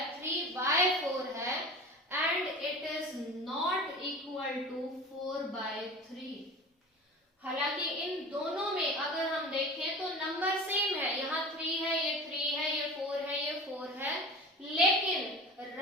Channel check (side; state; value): both; normal; correlation 0.36